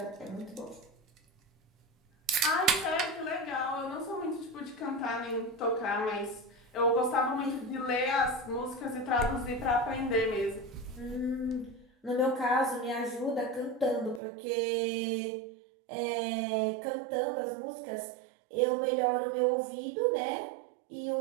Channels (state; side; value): drops out; left; at 14.2 s